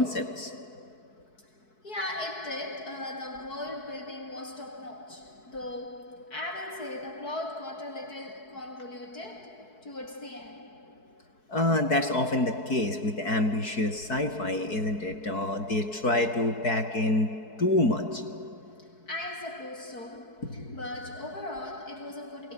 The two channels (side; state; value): right; late; 4.6 ms